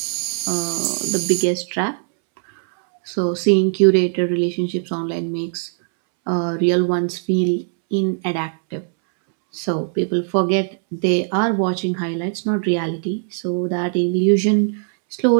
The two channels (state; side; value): silent; left; 66 dB below the other